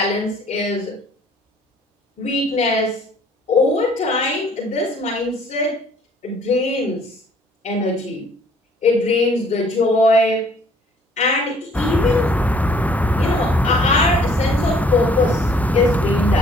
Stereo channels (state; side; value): normal; both; correlation 0.59